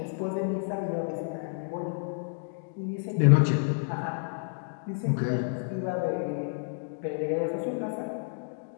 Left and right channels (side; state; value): right; silent; digital silence